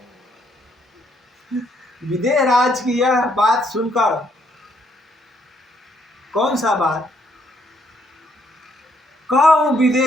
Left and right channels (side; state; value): both; normal; correlation 0.70